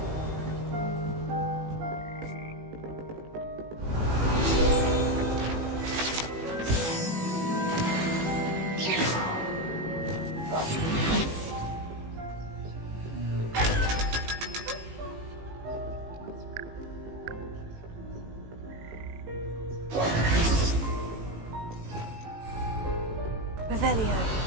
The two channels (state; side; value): late; left; 18 ms